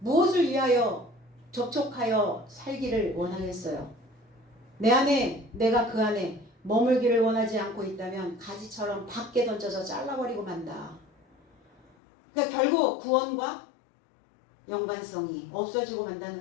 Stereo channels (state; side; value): drops out; right; at 11.9 s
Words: 위하여 접촉하여 살기를 원하겠어요? 내 안에 내가 그 안에 머물기를 원하지 않고 있다면 가지처럼 밖에 던져서 잘라버리고 만다. 그러니까 결국 구원과 연관성이 없어지고